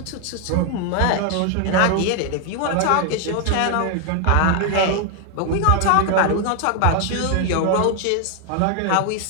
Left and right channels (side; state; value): both; different; correlation 0.00